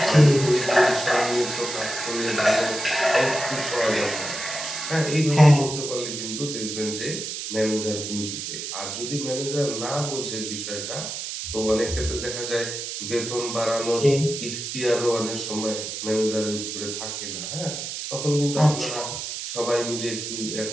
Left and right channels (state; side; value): noise; right; hiss, 6 dB below the sound